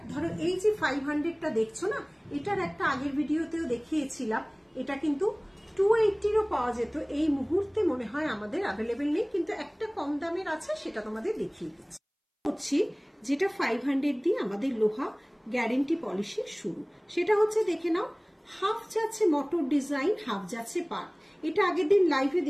ধরো এই যে 500টা দেখছো না, এটার একটা আগের ভিডিওতেও দেখিয়েছিলাম, এটা কিন্তু 280-ও পাওয়া যেত। এই মুহূর্তে মনে হয় আমাদের অ্যাভেলেবেল নেই, কিন্তু একটা কম দামের আছে, সেটা তোমাদের দেখিয়ে দিচ্ছি। হচ্ছে যেটা 500 দিয়ে আমাদের লোহা গ্যারেন্টি পলিশের শুরু, সেটা হচ্ছে দেখে নাও, হাফ যাচ্ছে মোটর ডিজাইন, হাফ যাচ্ছে পার্ট। এটা আগের দিন লাইভে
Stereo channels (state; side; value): identical; both; correlation 1.00